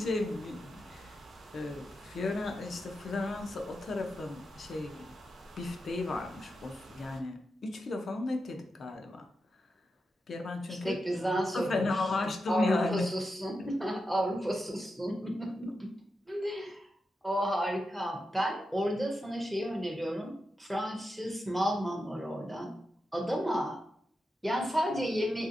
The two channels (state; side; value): normal; both; correlation 0.88